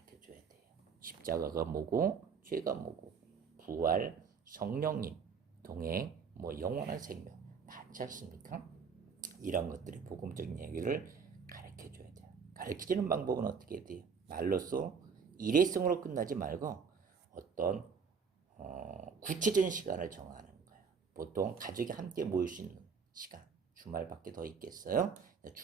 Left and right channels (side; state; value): left; quieter; 6.0 dB